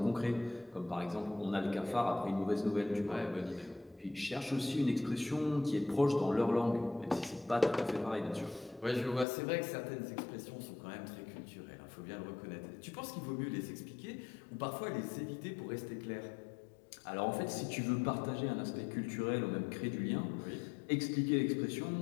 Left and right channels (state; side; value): drops out; right; at 9.2 s